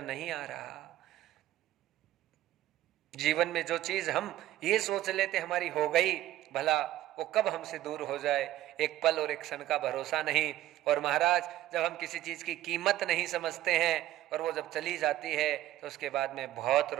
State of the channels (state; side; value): quieter; left; 14.2 dB